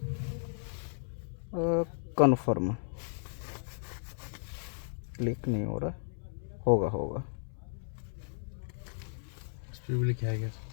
कन्फर्म क्लिक नहीं हो रहा, होगा उस पर भी लिखा है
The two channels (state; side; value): silent; right; 55 dB below the other